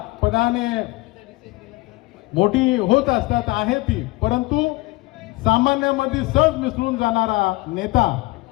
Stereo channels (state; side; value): quieter; right; 21.8 dB